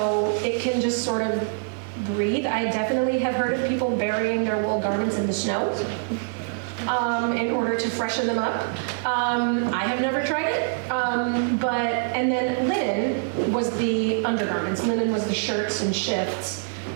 it can just sort of breathe. I definitely have heard of people burying their wool garments in the snow in order to freshen them up. I have never tried it, and then linen was the undergarments. Linen was the shirts and shifts,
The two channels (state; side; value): silent; left; 60 dB below the other